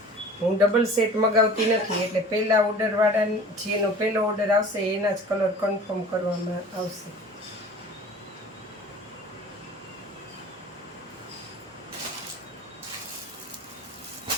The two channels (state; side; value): normal; both; correlation 0.43